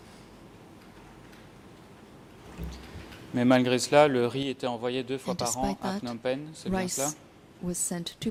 Mais malgré cela, le riz était envoyé 2 fois par an à Phnom Penh, c'est bien cela? Rice was sent to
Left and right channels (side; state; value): both; identical; correlation 1.00